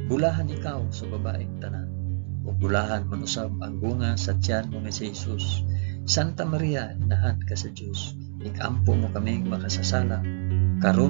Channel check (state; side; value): silent; left; digital silence